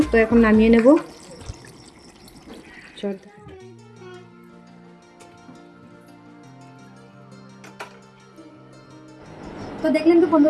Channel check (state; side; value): identical; both; correlation 1.00